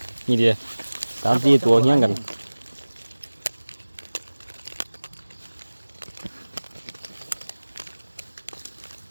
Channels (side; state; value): both; inverted; correlation -1.00